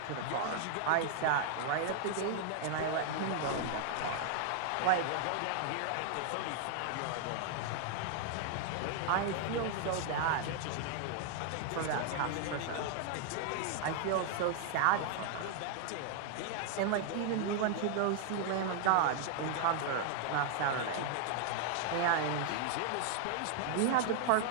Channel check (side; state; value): both; different; correlation 0.00